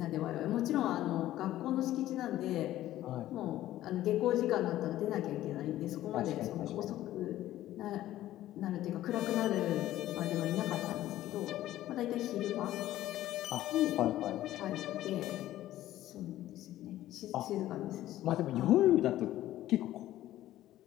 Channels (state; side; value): quieter; right; 14.1 dB